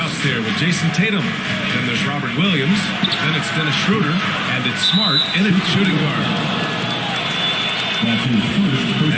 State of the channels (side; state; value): both; identical; correlation 1.00